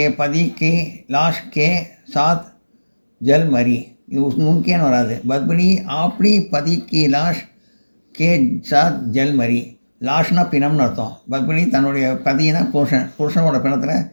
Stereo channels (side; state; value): both; inverted; correlation -1.00